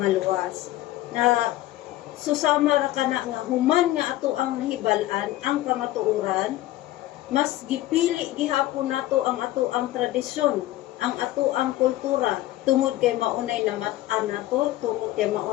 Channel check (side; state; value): right; quieter; 15.6 dB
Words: Na susama ra kana nga human nga ato ang nahibal-an ang kamatuoran, mas gipili gihapon nato ang ato ang tradisyon, ang ato ang kultura, tungod kay maunay namat-an nato, tungod kay